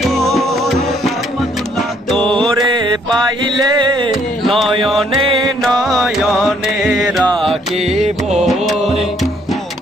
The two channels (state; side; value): normal; both; correlation 0.66